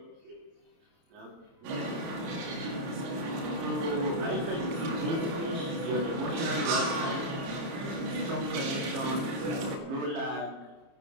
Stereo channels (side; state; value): left; late; 30 ms